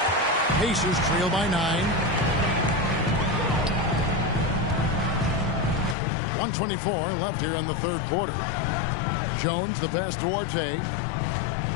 Pacers trail by 9. 1:24 left here in the 3rd quarter. Jones, the pass to Duarte.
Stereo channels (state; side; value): drops out; right; at 6.0 s